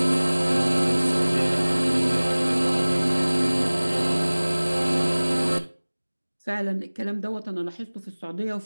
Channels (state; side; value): inverted; both; correlation -1.00